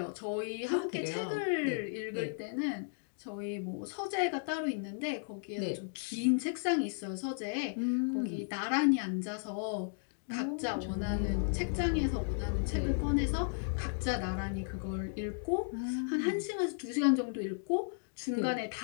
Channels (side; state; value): right; silent; digital silence